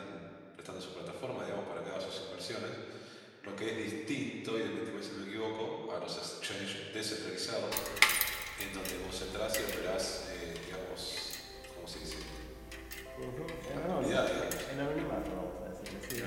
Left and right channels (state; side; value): identical; both; correlation 1.00